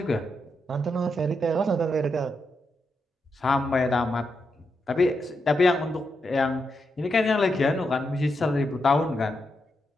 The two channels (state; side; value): normal; both; correlation 0.84